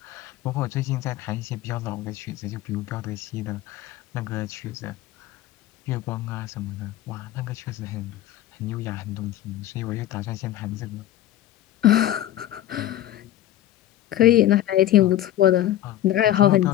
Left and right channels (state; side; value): quieter; right; 13.1 dB